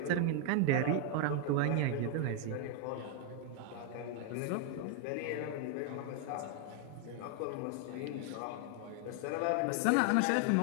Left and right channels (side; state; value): both; different; correlation 0.00